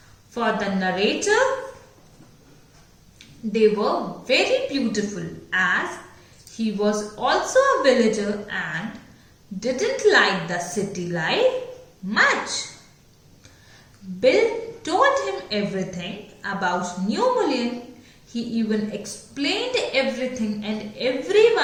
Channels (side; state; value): both; identical; correlation 1.00